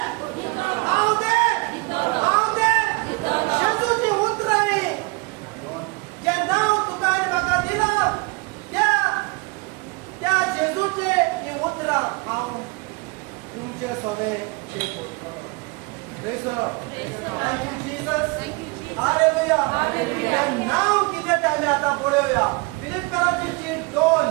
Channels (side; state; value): left; quieter; 27.8 dB